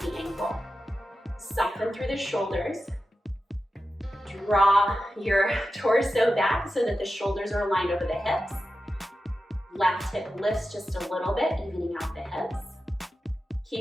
the ankle. Soften through the shoulders. Draw your torso back so that the shoulders are aligned over the hips. Left hip lifts just a little bit, evening out the hips.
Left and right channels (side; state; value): both; normal; correlation 0.92